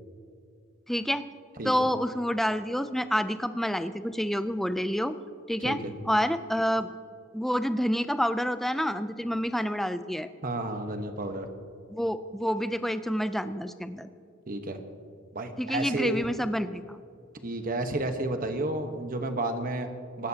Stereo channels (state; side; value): normal; both; correlation 0.82